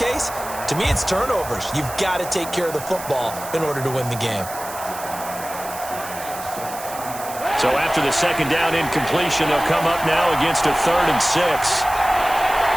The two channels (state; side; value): noise; right; hiss, 12 dB below the sound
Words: to me, it's turnovers. You've got to take care of the football in order to win the game. So after the second down incompletion, they'll come up now against a 3rd and 6.